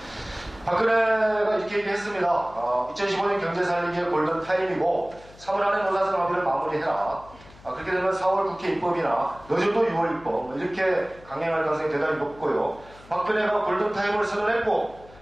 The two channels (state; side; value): noise; left; hum, 23 dB below the sound